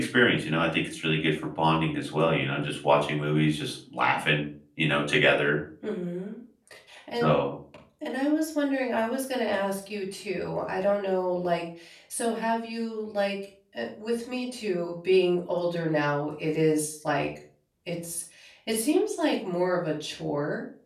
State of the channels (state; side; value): identical; both; correlation 1.00